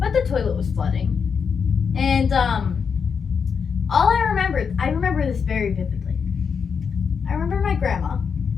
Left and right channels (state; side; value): quieter; right; 6.3 dB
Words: the toilet was flooding. And all I remember this very vividly. I remember my grandma,